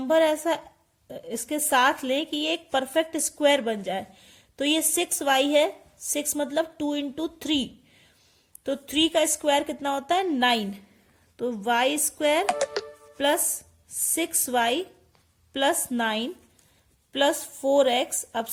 ऐसा इसके साथ लें कि ये एक परफेक्ट स्क्वायर बन जाए। तो ये 6y है, 6 मतलब 2 इंटू 3, तो 3 का स्क्वायर कितना होता है 9। तो y square plus 6y plus 9 plus 4x, अब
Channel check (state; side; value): identical; both; correlation 1.00